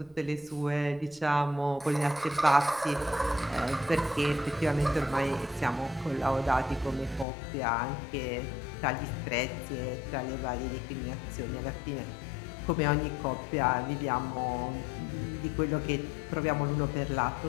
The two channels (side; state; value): right; drops out; at 7.2 s